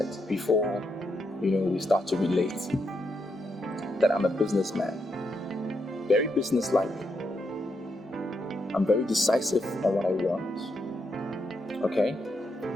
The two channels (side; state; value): both; normal; correlation 0.81